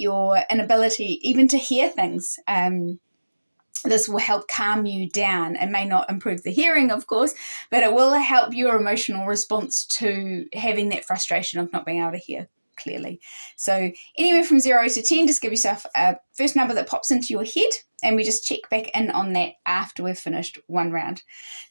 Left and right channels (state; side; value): inverted; both; correlation -1.00